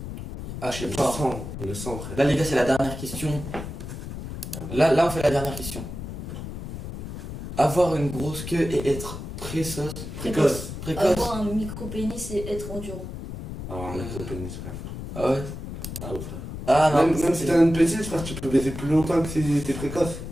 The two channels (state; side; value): noise; left; rumble, 8 dB below the sound